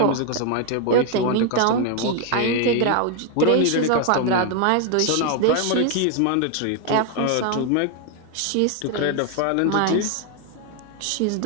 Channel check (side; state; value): both; different; correlation 0.01